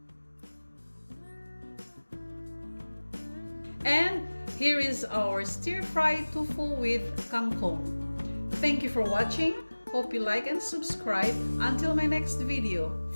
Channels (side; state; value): both; inverted; correlation -1.00